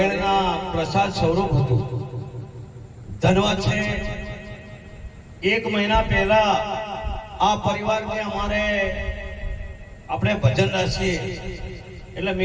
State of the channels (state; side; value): identical; both; correlation 1.00